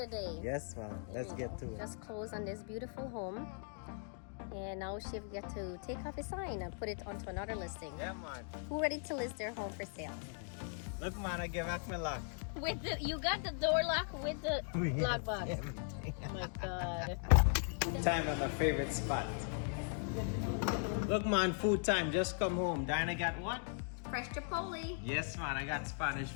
day. Yes, ma'am. Let's get to it. Just close on this beautiful home. And now Shiv get to take off his sign and put it onto another listing. Yeah, man. Who ready to list their home for sale? Look, man, I give back my lock. With the, you got the door lock with the lock box. Everything. Oh my God. Time at my favorite spot. Look, man, food time. Just come home. Diana got what? Fresh Chipotle. Yes, man. I got Spanish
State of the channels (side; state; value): right; silent; 52 dB below the other